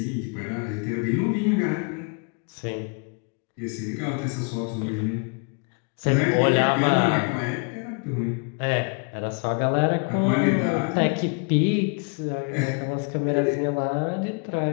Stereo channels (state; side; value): quieter; right; 36.5 dB